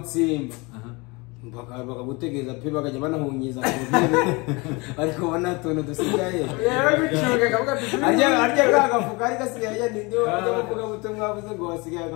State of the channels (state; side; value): quieter; right; 26.6 dB